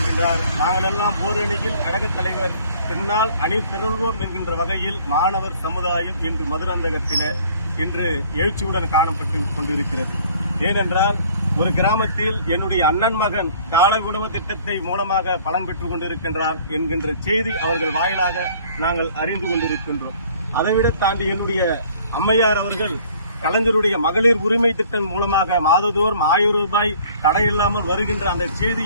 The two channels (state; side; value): inverted; both; correlation -0.55